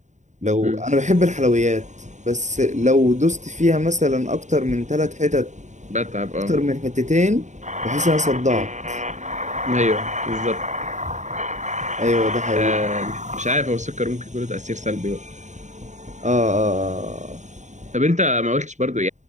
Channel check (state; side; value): late; left; 0.35 ms